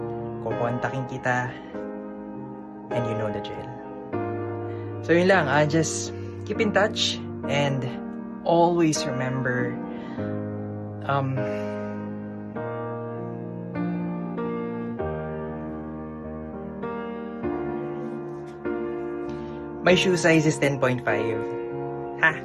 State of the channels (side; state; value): both; identical; correlation 1.00